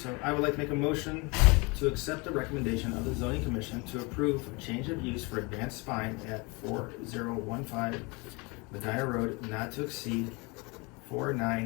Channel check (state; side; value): quieter; right; 27.8 dB